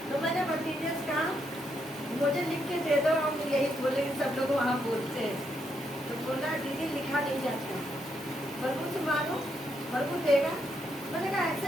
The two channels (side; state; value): both; normal; correlation 0.78